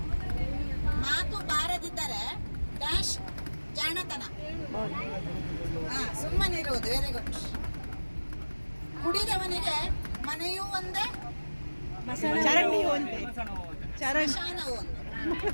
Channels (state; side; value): inverted; both; correlation -1.00